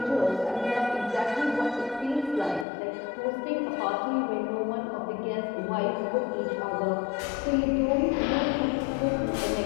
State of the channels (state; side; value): drops out; right; at 2.7 s